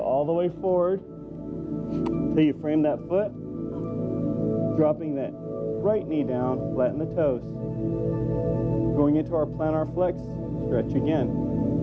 the way forward until you frame that foot, dropping that right knee down, flatten the toes. Going into our plantar flex, stretch again.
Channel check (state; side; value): identical; both; correlation 1.00